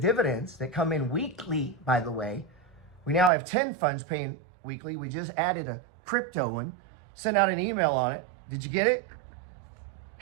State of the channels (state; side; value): drops out; left; at 3.3 s